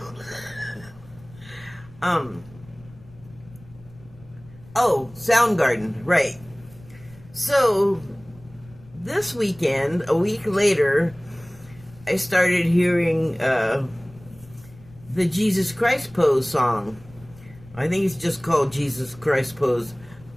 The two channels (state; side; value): noise; left; rumble, 22 dB below the sound